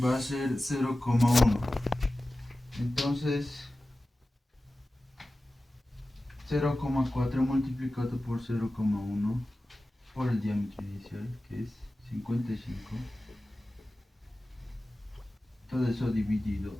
va a ser 0,1. Entonces 0,4 multiplicado por 0,1 por el diámetro inicial, que es 55. Todo eso dividido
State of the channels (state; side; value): normal; both; correlation 0.95